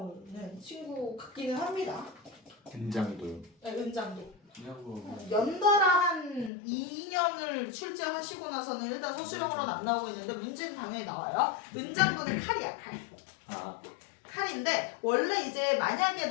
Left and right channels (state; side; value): drops out; right; at 6.5 s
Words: 친구 같기는 합니다. 은장도요. 네, 은장도. 연달아 한 2년을 출제하시고 나서는 일단 서술형으로는 안 나오고 있는데 문제는 당연히 나와요. 은장도는 칼이야, 칼. 칼인데 원래 이제 만약에